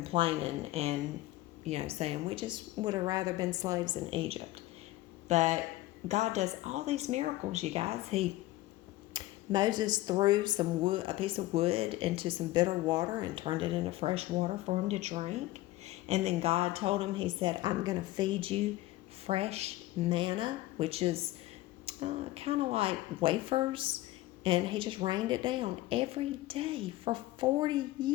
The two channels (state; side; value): quieter; right; 17.0 dB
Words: and, saying, we just would have rather been slaves in Egypt. But God does all these miracles, you guys. Moses threw a piece of wood into some bitter water and turned it into fresh water for him to drink. And then God told him, he said, I'm going to feed you fresh manna, which is kind of like wafers. And he just rained it down every day for 40